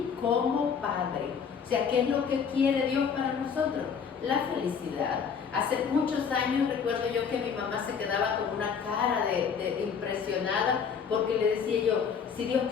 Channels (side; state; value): right; quieter; 6.6 dB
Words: como padre. O sea, ¿qué es lo que quiere Dios para nosotros? La felicidad. Hace muchos años recuerdo yo que mi mamá se quedaba con una cara de impresionada, porque le decía yo, si Dios